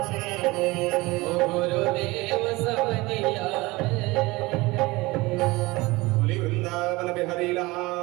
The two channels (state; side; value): quieter; left; 21.9 dB